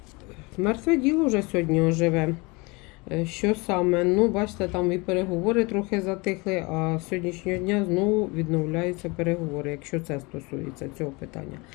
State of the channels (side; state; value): right; quieter; 26.6 dB